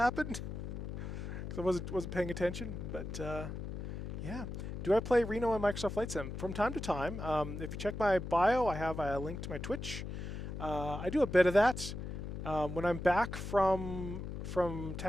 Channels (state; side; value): noise; left; hum, 6 dB below the sound